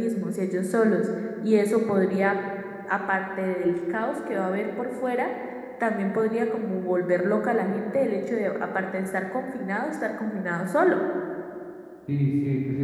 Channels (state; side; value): identical; both; correlation 1.00